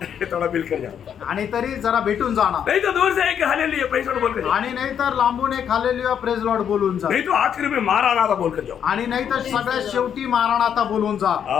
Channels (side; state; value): right; quieter; 8.6 dB